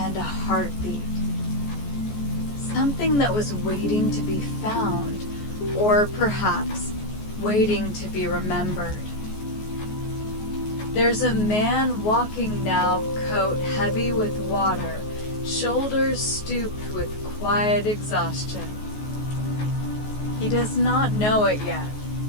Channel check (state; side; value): late; right; 14 ms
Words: a heartbeat. Something that was waiting to be found, or perhaps waiting to be remembered. There's a man walking now, coat heavy with water, shoulders stooped with quiet exhaustion. He does not know it yet,